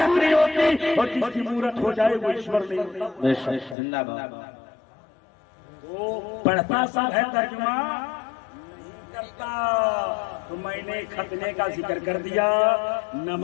نہیں ہوتی، اور جس کی مورت ہو جائے وہ ایشور نہیں ہوتا۔ بے شک زندہ باد۔ وہ پڑھتا سب ہے ترجمہ کرتا، تو میں نے ختنے کا ذکر کر دیا،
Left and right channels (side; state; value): right; drops out; at 3.8 s